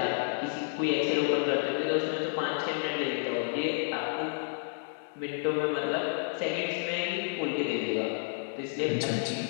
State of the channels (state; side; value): silent; right; digital silence